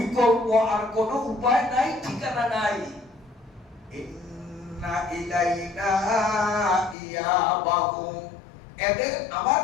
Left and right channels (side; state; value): right; drops out; at 7.0 s